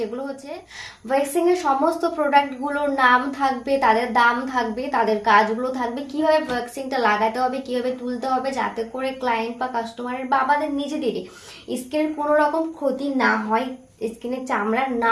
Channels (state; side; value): identical; both; correlation 1.00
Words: হচ্ছে ওয়্যাক্সিং এর সমস্ত প্রোডাক্টগুলোর নাম থাকবে, তাদের দাম থাকবে, তাদের কাজগুলো থাকবে, কিভাবে ওয়্যাক্সিংটা লাগাতে হবে, কিভাবে তুলতে হবে, যাতে করে ক্লায়েন্ট বা কাস্টমারের বা আমাদের নিজেদেরই স্কিনের কোনো রকম ক্ষতি না হয়, স্কিনের চামড়া